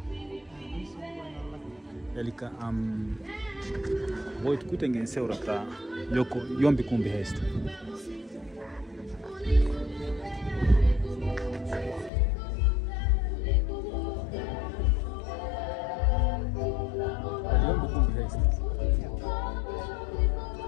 Elika voit kutengen seurata joko jompikumpi heistä. Jompikumpi heistä.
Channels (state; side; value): drops out; right; at 12.1 s